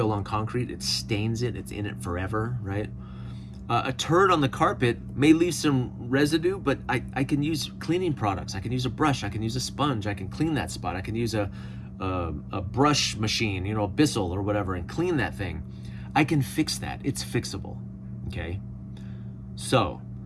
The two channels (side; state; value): both; identical; correlation 1.00